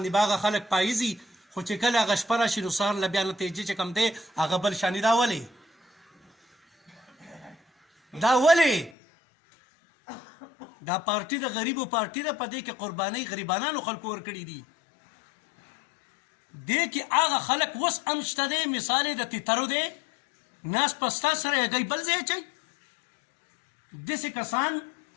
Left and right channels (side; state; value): right; drops out; at 8.9 s